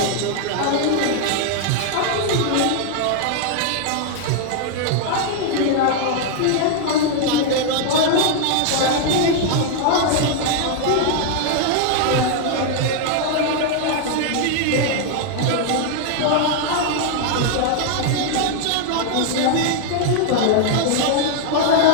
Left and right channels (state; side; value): different; both; correlation 0.00